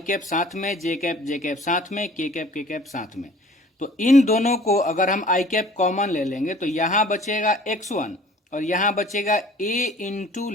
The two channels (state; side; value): normal; both; correlation 0.50